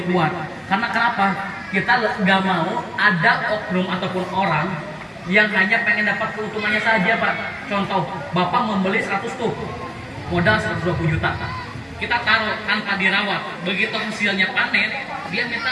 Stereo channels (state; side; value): identical; both; correlation 1.00